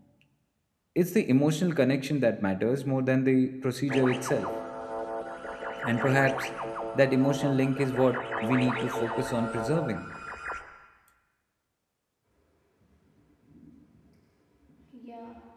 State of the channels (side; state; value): both; identical; correlation 1.00